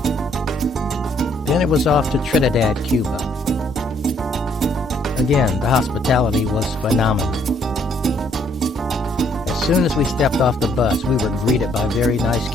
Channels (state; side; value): normal; both; correlation 0.67